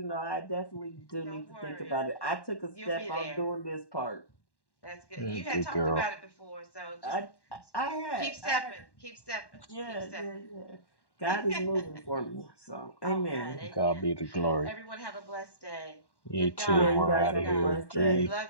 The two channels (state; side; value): late; right; 1.1 ms